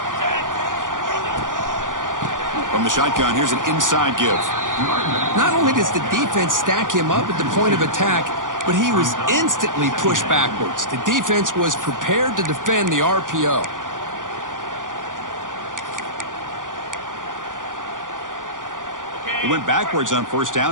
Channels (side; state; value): left; late; 0.88 ms